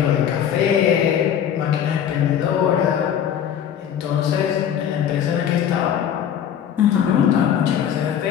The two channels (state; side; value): quieter; right; 9.2 dB